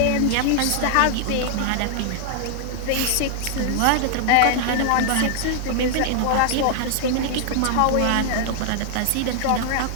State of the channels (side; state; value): both; different; correlation -0.01